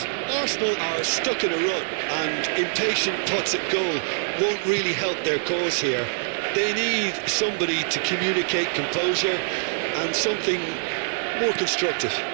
Arsenal are stuck in a rut and impatient putts at goal won't really help their cause here. They need somebody to communicate composure and something more constructive.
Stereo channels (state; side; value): silent; left; 62 dB below the other